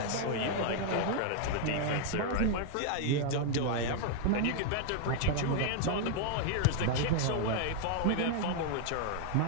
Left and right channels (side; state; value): both; different; correlation 0.00